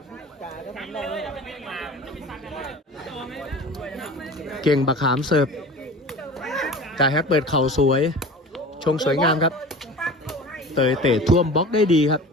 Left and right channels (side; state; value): both; normal; correlation 0.37